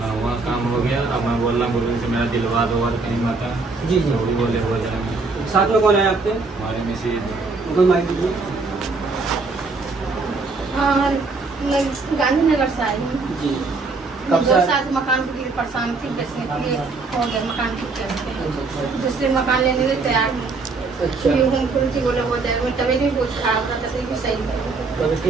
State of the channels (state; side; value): quieter; left; 4.0 dB